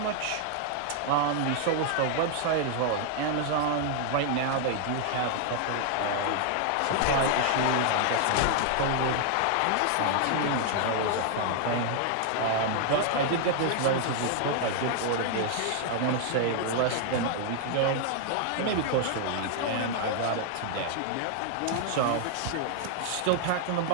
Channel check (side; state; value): both; different; correlation 0.00